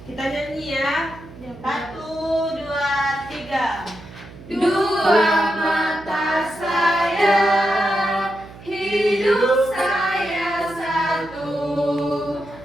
Dua mata saya, hidup saya satu.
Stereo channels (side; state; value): right; noise; hum, 18 dB below the sound